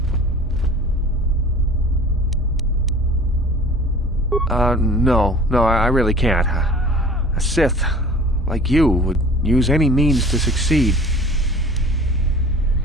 No, I really can't. A Sith, like you, would use any means to succeed.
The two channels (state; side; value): normal; both; correlation 0.44